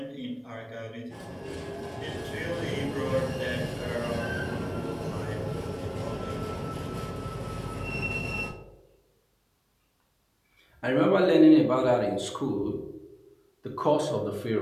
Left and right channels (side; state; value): both; identical; correlation 1.00